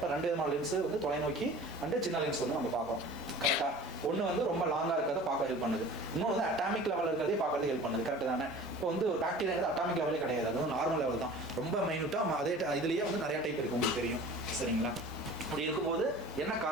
2 விதமான லென்ஸு வந்து தொலைநோக்கி அண்டு சின்ன லென்ஸ் வந்து நம்ம பார்க்குறோம் கரெக்டாக. ஒன்று வந்து ரொம்ப லாங்காக இருக்கிறத பார்க்க ஹெல்ப் பண்ணுது. இன்னொன்று வந்து அட்டாமிக் லெவலில் இருக்கிறதே பார்க்கறது ஹெல்ப் பண்ணுது. கரெக்டு தானே? இப்போ வந்து ஒரு பாக்டீரியாங்கிறது அட்டாமிக் லெவலே கிடையாது, அது வந்து நார்மல் லெவல் தான். ரொம்ப மைனூட்டாக அதே இதுலேயே வந்து நிறையா டைப் இருக்குது, உங்களுக்கு தெரியும் சரிங்களா? அப்படி இருக்கும்போது என்ன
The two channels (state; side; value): normal; both; correlation 0.42